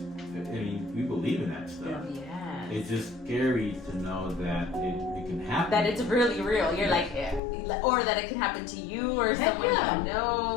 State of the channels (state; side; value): drops out; right; at 7.4 s